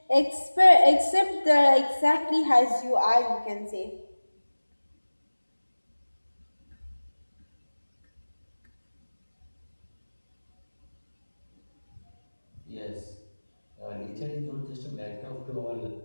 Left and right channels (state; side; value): inverted; both; correlation -1.00